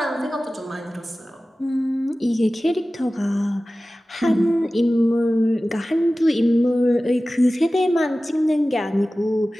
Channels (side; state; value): both; normal; correlation 0.96